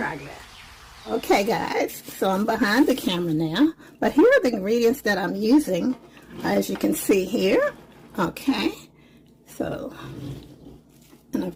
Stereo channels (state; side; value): identical; both; correlation 1.00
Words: Okay guys, so I'm behind the camera now, but here are the ingredients that I'm using, as you can see here. Okay, so, and